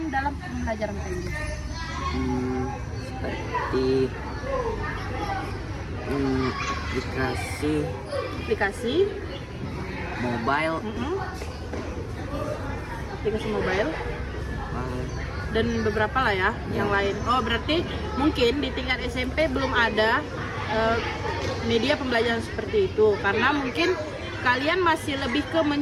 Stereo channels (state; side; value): identical; both; correlation 1.00